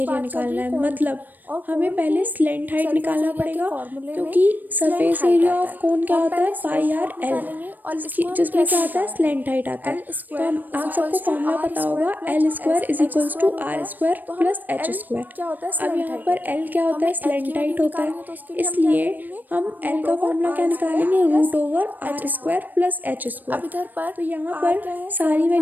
निकालना है। मतलब हमें पहले स्लेंट हाइट निकालना पड़ेगा, क्योंकि सरफेस एरिया ऑफ कोन क्या होता है πr/l, जिसमें क्या आता है स्लेंट हाइट आता है। तो हम आप सबको फॉर्मूला पता होगा L² = R² + H²। अब यहाँ पर L क्या होता है स्लेंट हाइट होता है, इसलिए हम L का फॉर्मूला क्या निकालेंगे √R² + H²। तो यहाँ पर सारी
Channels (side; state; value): left; late; 0.088 ms